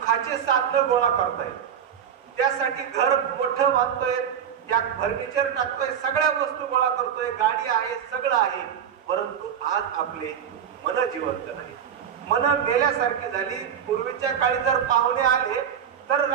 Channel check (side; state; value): left; quieter; 8.5 dB